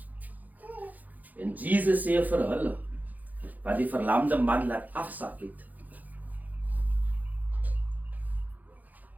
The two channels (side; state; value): left; late; 0.081 ms